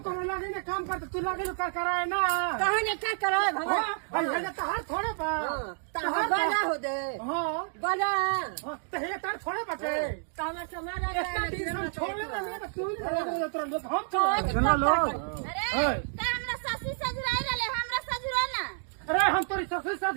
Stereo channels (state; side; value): silent; left; 58 dB below the other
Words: ना काम करते तू लगे कर कराए ना कहाँ ने क्या कराए भगवान हां ये तहार थोड़े बा तहार बड़ा हो दे हां बड़ा तो ये तार थोड़े बटे तो हम समारा इतना दिन हम छोड़े ना तो तू ही तुरंत हम तो सुना लो अरे त हमरा ससुर सजुराई रहले हमरा सजुरा ना अरे हम तोरी ससुर